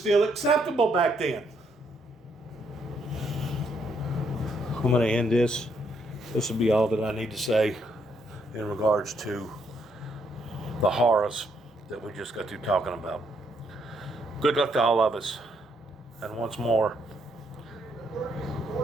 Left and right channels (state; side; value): normal; both; correlation 0.73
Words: acceptable back then. I'm going to end this. This will be all that I need to say in regards to the horrors that we just got through talking about. Good luck to all of us. And once more,